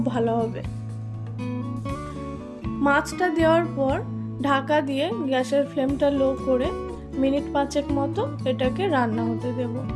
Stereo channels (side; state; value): both; identical; correlation 1.00